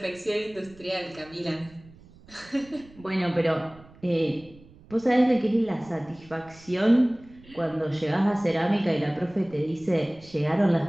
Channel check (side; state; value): right; noise; rumble, 24 dB below the sound